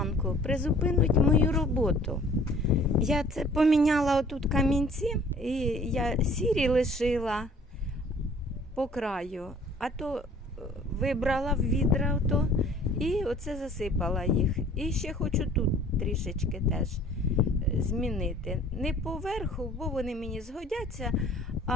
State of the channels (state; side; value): normal; both; correlation 0.53